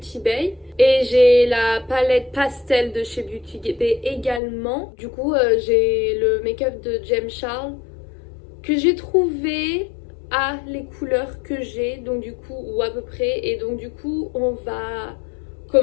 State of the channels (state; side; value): drops out; right; at 4.4 s